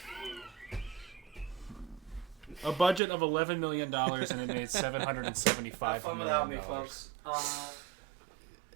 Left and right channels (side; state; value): left; drops out; at 3.0 s